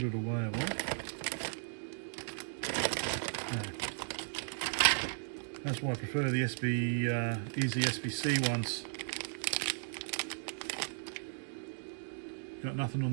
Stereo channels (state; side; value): silent; left; digital silence